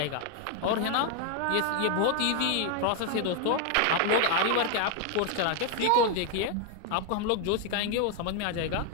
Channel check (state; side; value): different; both; correlation 0.01